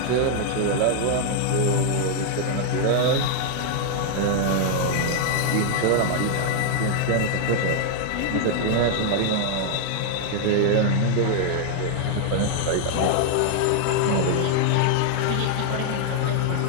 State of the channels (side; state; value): both; different; correlation 0.00